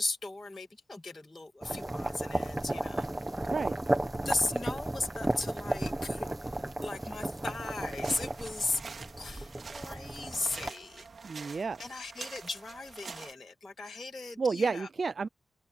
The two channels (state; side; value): normal; both; correlation 0.93